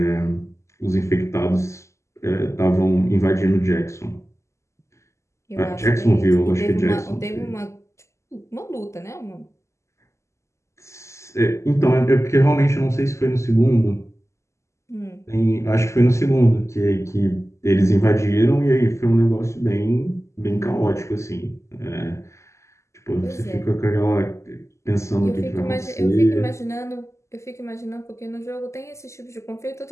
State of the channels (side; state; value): right; late; 0.14 ms